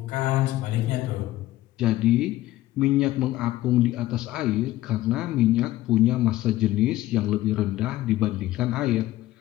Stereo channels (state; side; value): quieter; right; 15.7 dB